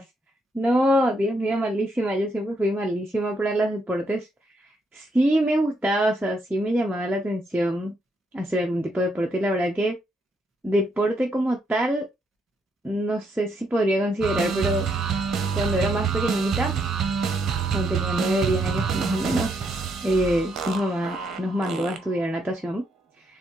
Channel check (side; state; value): both; normal; correlation 0.76